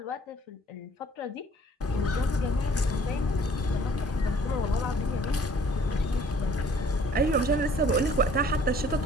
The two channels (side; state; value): both; normal; correlation 0.56